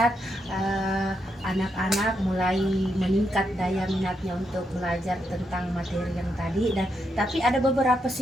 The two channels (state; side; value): normal; both; correlation 0.81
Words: anak-anak mulai meningkat daya minatnya untuk belajar tentang materi yang tadi, dan tapi ada beberapa